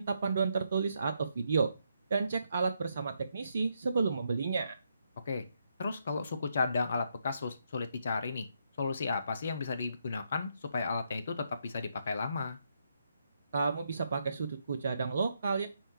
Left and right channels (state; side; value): inverted; both; correlation -0.78